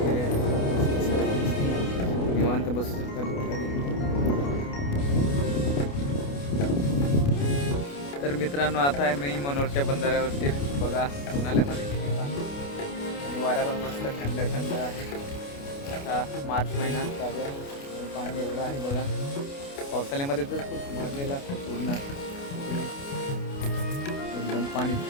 आहे. निवांत बसू शकता दुपारी. तर मित्रांनो, आता आहे मी मनोरच्या बंधाऱ्यावरती. बघा उन्हाळ्यामध्ये किती पाणी आणि वारा पण मस्त थंड थंड आहे. आता मार्च महिना चालू आहे आणि पाणी एवढं आहे बघा. पावसाळ्यामध्ये तर खूप भरलेलं असतं पूर्ण, एकदम पाणी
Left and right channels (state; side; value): late; right; 28 ms